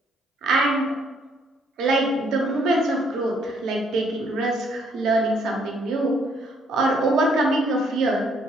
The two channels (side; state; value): both; normal; correlation 0.67